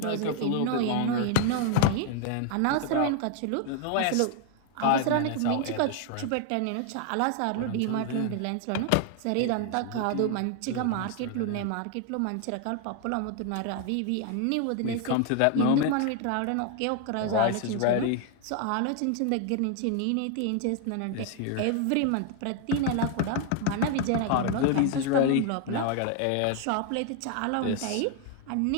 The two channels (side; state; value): both; different; correlation 0.00